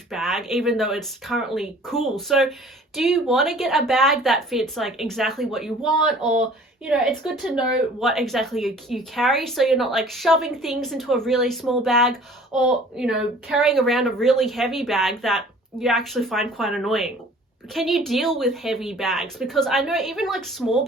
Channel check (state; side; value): normal; both; correlation 0.50